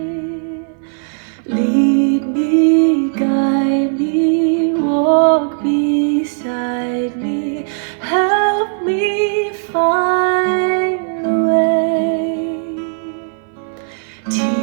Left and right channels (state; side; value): silent; left; 59 dB below the other